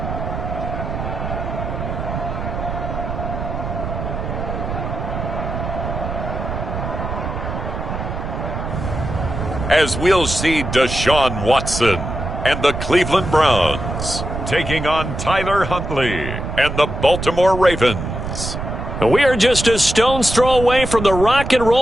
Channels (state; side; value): noise; right; rumble, 5 dB below the sound